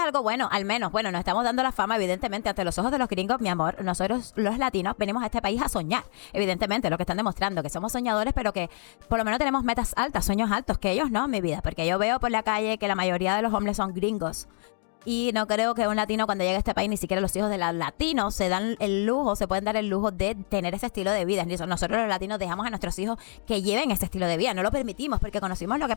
algo bueno, al menos, bueno, nos estamos dando la fama, evidentemente, ante los ojos de los gringos, mi amor. Nosotros, los latinos, venimos a este país a soñar, evidentemente, lo que están demostrando, que somos soñadores, pero que por lo menos tenemos metas altas, sueños altos, que ellos no, mi vida, porque yo veo por la calle que la mayoría de los hombres son gringos. Y no creo que un latino cuando llegue a este país, ni siquiera los hijos de los latinos se dan el lujo, se pueden dar el lujo de tener ese estilo de vida. Nosotros los latinos dejamos a nuestros hijos que lleven ese estilo de vida, no lo permitimos porque conocimos lo que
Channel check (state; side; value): silent; right; digital silence